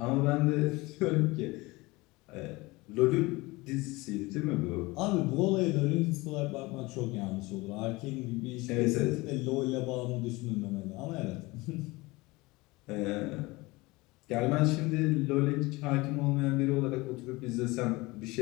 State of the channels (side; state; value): right; quieter; 22.6 dB